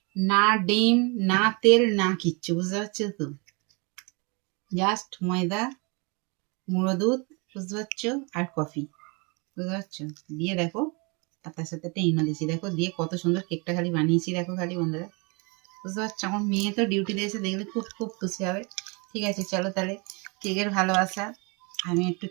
না ডিম না তেল না কিচ্ছু, বুঝতে পারছো তো? জাস্ট ময়দা, গুঁড়ো দুধ, বুঝতে পারছো, আর কফি, বুঝতে পারছো? দিয়ে দেখো, আর তার সাথে একটা ইনো দিয়েছি, দেখো দিয়ে কত সুন্দর কেকটা খালি বানিয়েছি, দেখো খালি বন্ধুরা বুঝতে পারছো? আমার মেয়ে তো ডিউটিতে এসে দেখলে খুব খুব খুশি হবে। ঠিক আছে, চলো তাহলে কেকের ভালোবাসা আমি একটু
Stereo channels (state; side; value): quieter; left; 30.9 dB